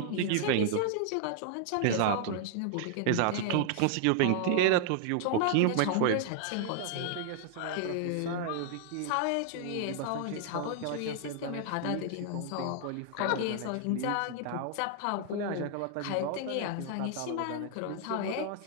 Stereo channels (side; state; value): both; different; correlation 0.00